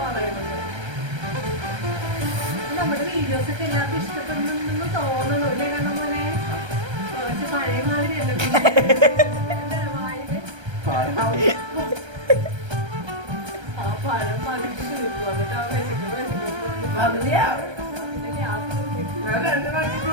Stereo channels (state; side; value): late; left; 1.3 ms